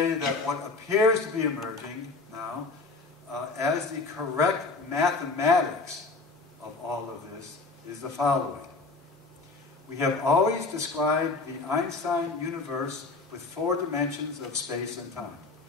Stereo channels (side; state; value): right; quieter; 3.8 dB